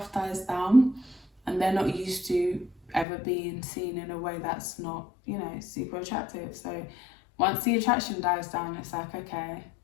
dies down and they're not used to ever being seen in a way that's not, you know, super attractive. So once the attraction dies down, it's like, okay,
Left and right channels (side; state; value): right; drops out; at 3.1 s